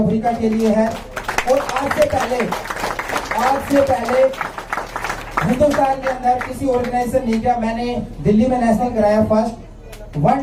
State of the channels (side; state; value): both; identical; correlation 1.00